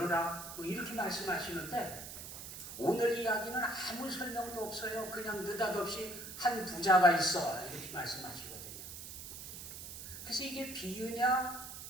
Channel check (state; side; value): noise; right; hiss, 10 dB below the sound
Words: 이렇게 말씀하시는데 오늘 이야기는 아무 설명도 없어요. 그냥 느닷없이 한 부자가 있어 이렇게 말씀하시거든요. 그래서 이게 비유냐